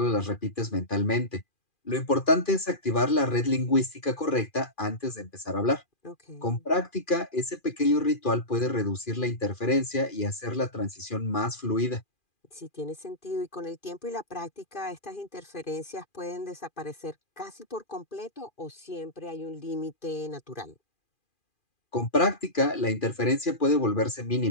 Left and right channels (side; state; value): right; late; 2.4 ms